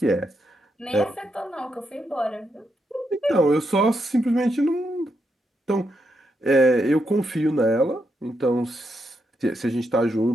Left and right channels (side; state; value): both; normal; correlation 0.82